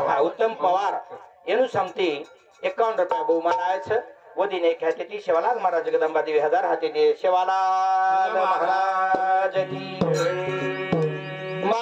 उत्तम पवार एनु सांगते 51 रुपया बहुमान आए छ वो दिन एक है ती शिवालाल महाराज जगदंबा देवी हजार हाथी दे शिवालाल महाराज की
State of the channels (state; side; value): identical; both; correlation 1.00